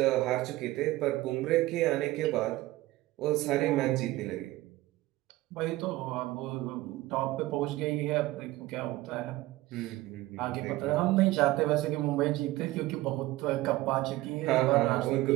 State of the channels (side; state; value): left; quieter; 18.0 dB